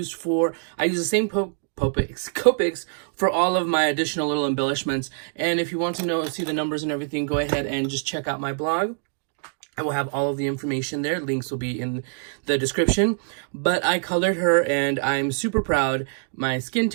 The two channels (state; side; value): silent; left; digital silence